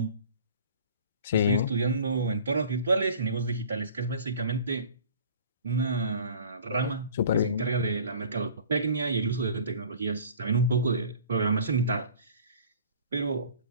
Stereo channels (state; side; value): inverted; both; correlation -0.46